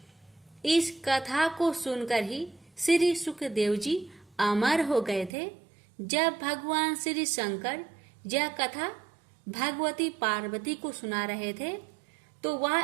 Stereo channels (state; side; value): drops out; left; at 5.3 s